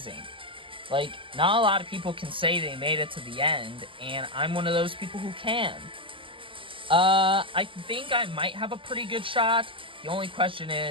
Like, not a lot of people can say they made it to the end, and I'm one of those people who can. I think I might have a pretty good shot. The only question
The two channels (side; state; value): left; late; 0.25 ms